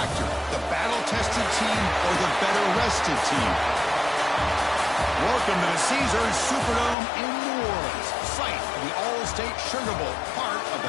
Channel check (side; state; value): right; drops out; at 7.0 s